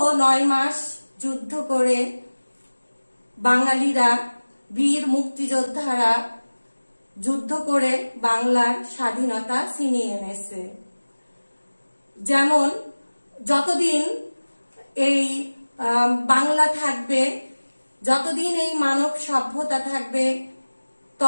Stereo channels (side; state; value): both; inverted; correlation -1.00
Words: 9 মাস যুদ্ধ করে বাঙালিরা, বীর মুক্তিযোদ্ধারা যুদ্ধ করে বাংলার স্বাধীনতা ছিনিয়ে এনেছে। যেমন যতদিন এই বাংলা থাকবে, যতদিন এই মানব সভ্যতা থাকবে,